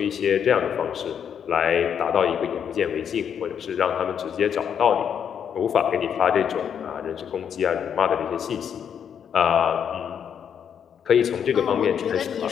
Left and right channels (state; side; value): quieter; right; 8.1 dB